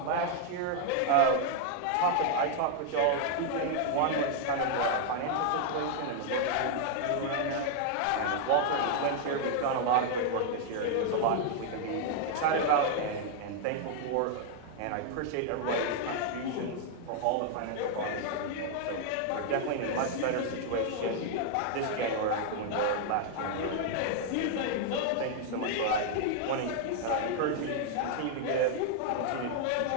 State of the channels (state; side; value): different; both; correlation 0.00